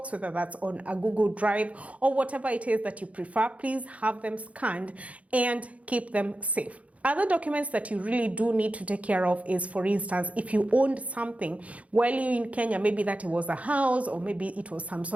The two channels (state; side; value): late; left; 0.066 ms